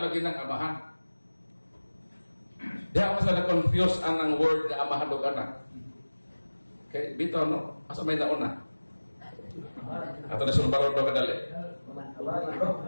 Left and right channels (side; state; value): both; inverted; correlation -1.00